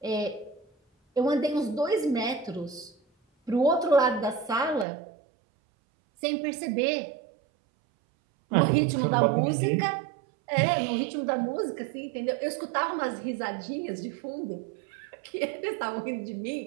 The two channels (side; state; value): left; drops out; at 4.9 s